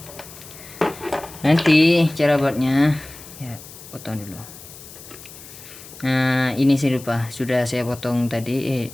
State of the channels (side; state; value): left; noise; hiss, 17 dB below the sound